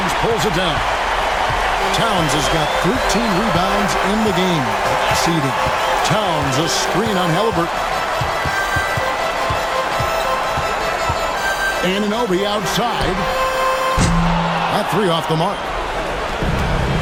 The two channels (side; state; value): both; identical; correlation 1.00